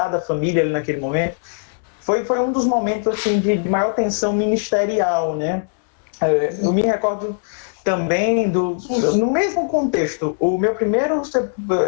da família ali naquele momento. Foi um dos momentos assim, de maior tensão ministerial, né? Eu me recordo também no mesmo contexto, o meu primeiro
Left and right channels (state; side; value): silent; right; digital silence